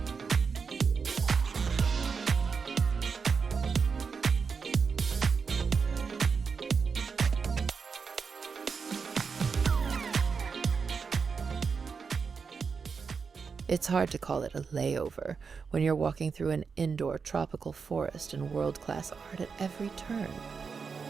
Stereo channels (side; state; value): left; quieter; 5.5 dB